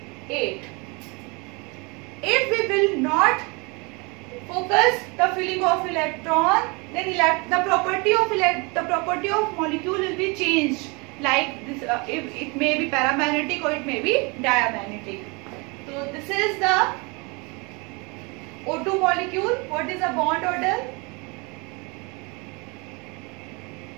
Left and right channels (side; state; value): left; quieter; 29.0 dB